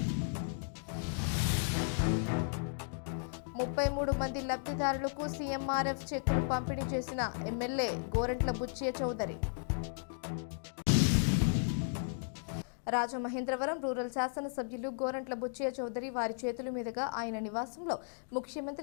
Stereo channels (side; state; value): right; silent; digital silence